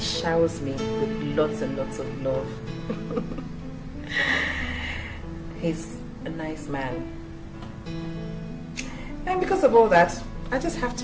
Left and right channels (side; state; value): both; identical; correlation 1.00